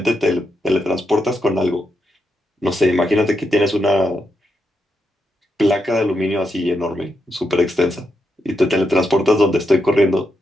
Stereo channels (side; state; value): both; normal; correlation 0.83